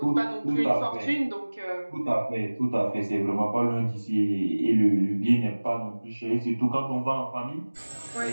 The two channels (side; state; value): both; inverted; correlation -1.00